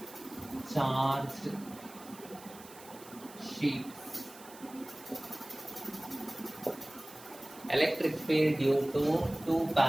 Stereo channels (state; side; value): noise; right; hiss, 19 dB below the sound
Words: charged sheets. Electric field due to two